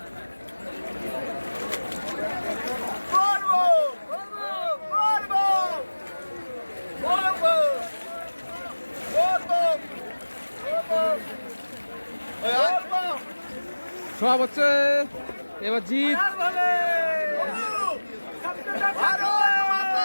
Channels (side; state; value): both; inverted; correlation -1.00